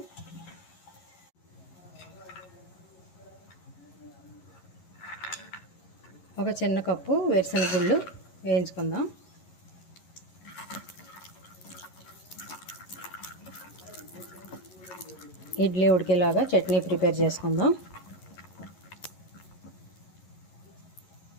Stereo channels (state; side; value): late; right; 11 ms